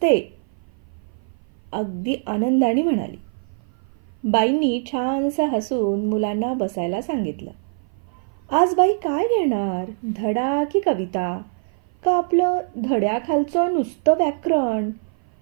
अगदी आनंदाने म्हणाली. बाईंनी छानसं हसून मुलांना बसायला सांगितलं. आज बाई काय घेणार, धडा की कविता, का आपलं धड्याखालचं नुसतं व्याकरण?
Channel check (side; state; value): left; silent; 56 dB below the other